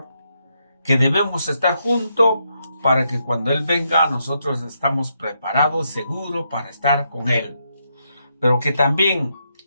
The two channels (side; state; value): both; inverted; correlation -0.80